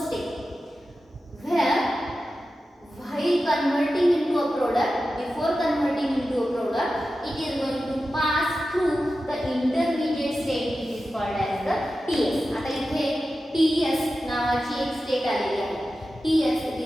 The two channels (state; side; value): normal; both; correlation 0.93